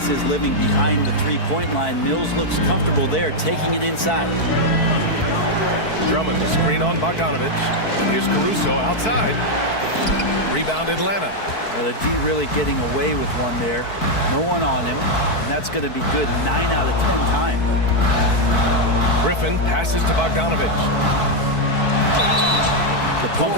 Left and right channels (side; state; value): right; late; 4.6 ms